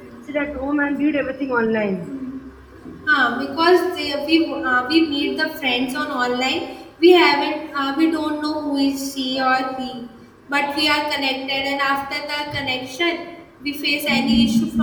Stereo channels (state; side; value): identical; both; correlation 1.00